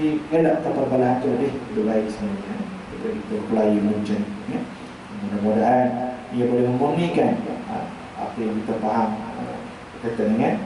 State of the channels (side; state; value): both; identical; correlation 1.00